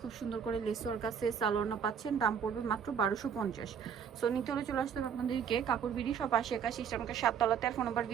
খুব সুন্দর করে লেস ওয়ার্ক আছে, সালোয়ার পাচ্ছেন, দাম পড়বে মাত্র 1250। সো নিতে হলে চলে আসতে হবে আপনাদেরকে কাপড় বিডি সব 80 সিস্টেমকে 7 তলাতে, আর ফোন নাম্বার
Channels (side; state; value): left; quieter; 7.5 dB